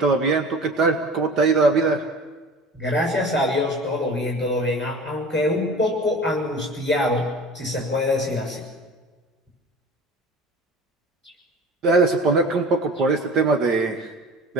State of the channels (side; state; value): both; normal; correlation 0.39